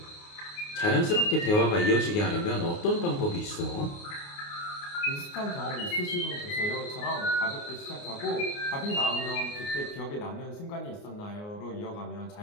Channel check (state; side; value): late; right; 29 ms